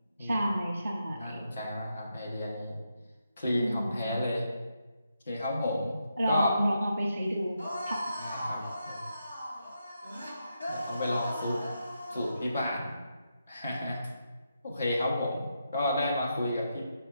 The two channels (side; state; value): both; inverted; correlation -0.83